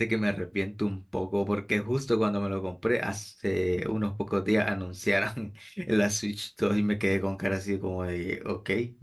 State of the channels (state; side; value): identical; both; correlation 1.00